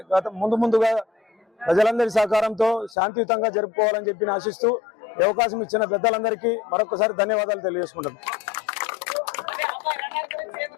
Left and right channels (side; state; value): right; drops out; at 3.0 s